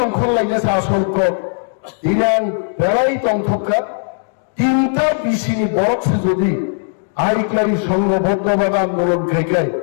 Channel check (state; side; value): silent; right; digital silence